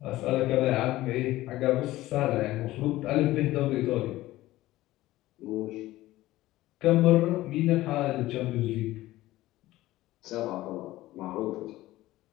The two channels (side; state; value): right; quieter; 16.6 dB